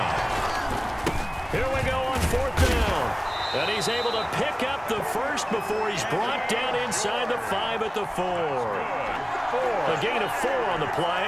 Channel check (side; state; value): both; identical; correlation 1.00